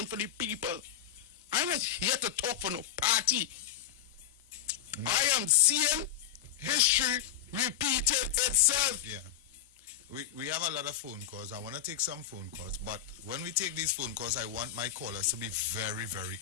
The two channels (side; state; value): right; quieter; 10.8 dB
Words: for the people. I'm not here to talk for no party. I am seeing history repeating itself. Yeah. We have a lot of phone calls. I want to take some phone calls, but when we take these phone calls, I want my callers to be very, very